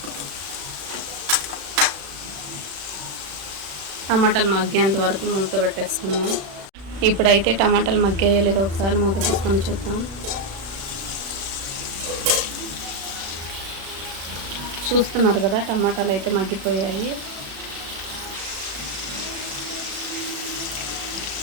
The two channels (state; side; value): late; left; 36 ms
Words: టమాటాలు మగ్గేంత వరకు మూత పెట్టేసుకుందాం. ఇప్పుడైతే టమాటాలు మగ్గాయో లేదో ఒకసారి మూత తీసుకొని చూద్దాం. చూస్తున్నారు కదా, టమాటాలు అయితే మగ్గిపోయాయి.